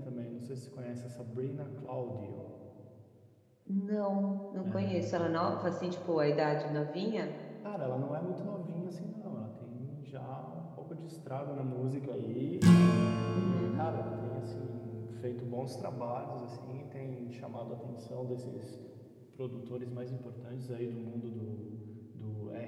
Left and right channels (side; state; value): both; identical; correlation 1.00